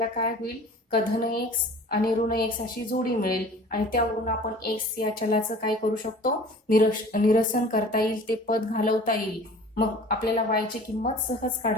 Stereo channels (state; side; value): normal; both; correlation 0.45